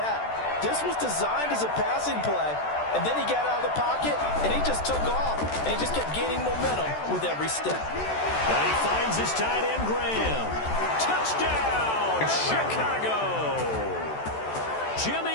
This was designed as a passing play, and then he got out of the pocket, and he just took off, and he just kept gaining momentum with every step. And he finds his tight end, Graham. Touchdown, Chicago!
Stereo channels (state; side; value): late; right; 14 ms